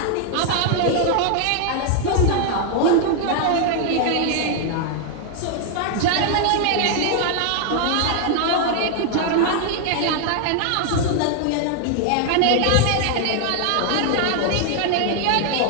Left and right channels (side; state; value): both; different; correlation 0.00